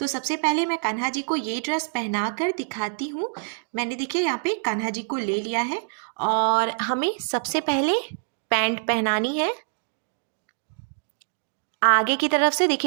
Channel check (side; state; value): left; silent; digital silence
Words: सबसे पहले मैं कान्हा जी को ये ड्रेस पहना कर दिखाती हूँ। मैंने देखिए यहाँ पे कान्हा जी को ले लिया है और हमें सबसे पहले पैंट पहनानी है। आगे की तरफ से